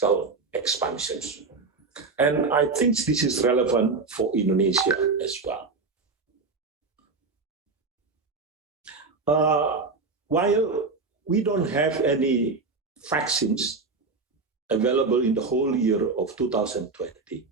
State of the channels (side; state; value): left; quieter; 4.2 dB